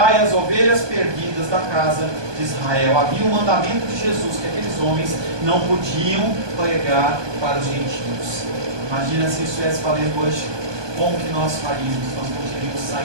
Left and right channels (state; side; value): late; left; 1.2 ms